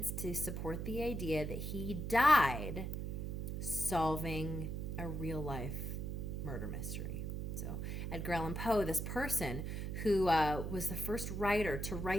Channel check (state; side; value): noise; right; hum, 3 dB below the sound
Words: to support the idea that he died solving a real life murder mystery. So Edgar Allan Poe, this person who was the first writer to